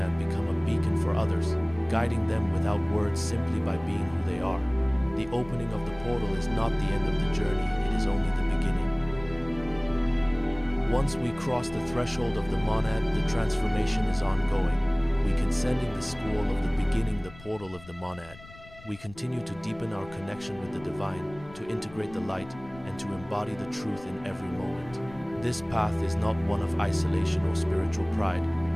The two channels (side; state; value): left; noise; rumble, 20 dB below the sound